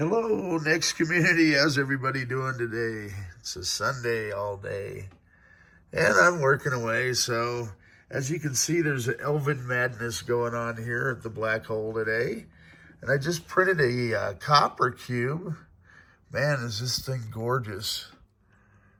Hello, Next community. How's everybody doing today? It's a Sunday all day, and I'm working away. So, as you can see, there's an Elven madness going on here at the black hole today. And I just printed a copper cube. Man, is this thing gorgeous.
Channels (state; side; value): identical; both; correlation 1.00